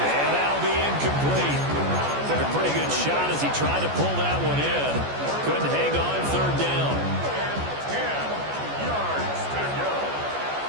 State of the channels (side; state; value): left; late; 14 ms